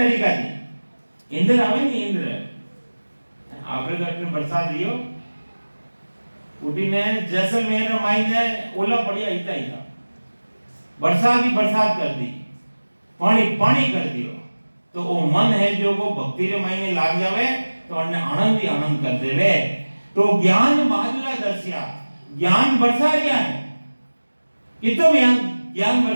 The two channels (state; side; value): inverted; both; correlation -1.00